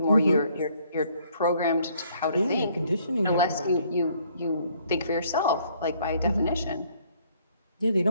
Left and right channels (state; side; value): inverted; both; correlation -0.64